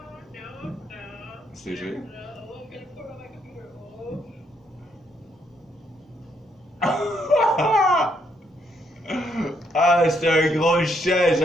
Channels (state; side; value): normal; both; correlation 0.74